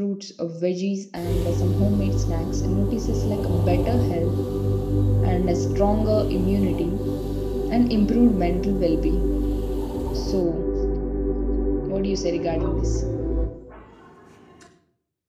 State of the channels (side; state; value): both; identical; correlation 1.00